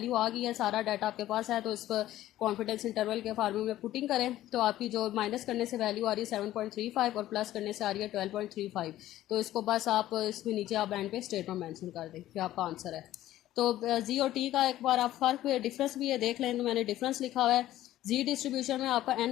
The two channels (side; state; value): right; quieter; 14.1 dB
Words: आ गई है, सारा डाटा आपके पास है, तो इस पर कॉन्फिडेंस इंटरवल के फार्मूले में पुटिंग करें तो आपकी जो माइनस करने से वैल्यू आ रही है 7.35 और प्लस करने से आ रही है 12.35। तो इसको बस आप इसमें नीचे आप एंड पे स्टेटमेंट मेंशन कर दें कि आपका आंसर है। तो जी और टी का एक बार आप फर्क डिफरेंस भी ये देख लें, तो मैंने डिफरेंस लिखा हुआ है। जी डिस्ट्रीब्यूशन में आपका